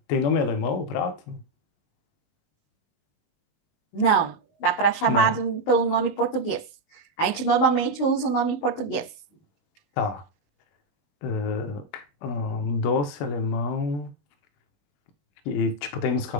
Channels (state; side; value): late; right; 19 ms